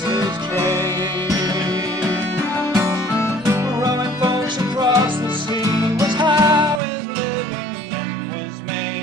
his trade. Rowing folks across the sea was how his living was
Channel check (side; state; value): left; drops out; at 6.8 s